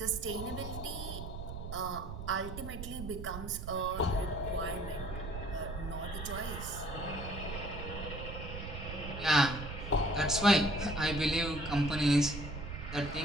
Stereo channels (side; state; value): right; noise; rumble, 8 dB below the sound